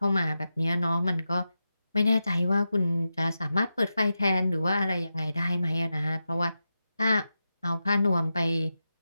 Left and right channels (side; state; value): both; inverted; correlation -0.90